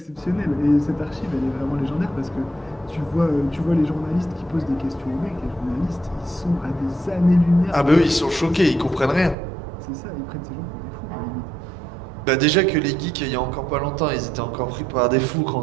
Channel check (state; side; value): drops out; left; at 9.3 s